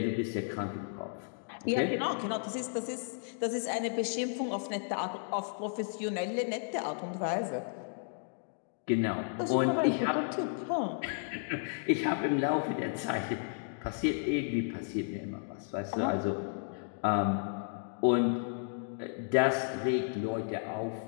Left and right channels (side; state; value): right; silent; digital silence